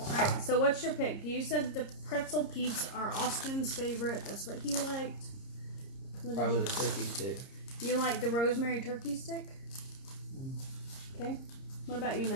so what's your pick? You said the pretzel peeps are Austin's favorite. That's what he liked. Probably the turkey stick. You like the rosemary turkey stick? Okay. What about you,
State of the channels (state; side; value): late; right; 30 ms